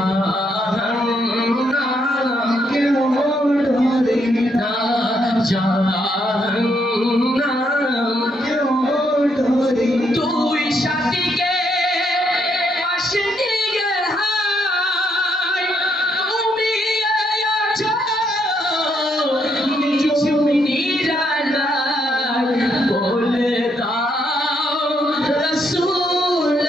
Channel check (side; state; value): both; normal; correlation 0.75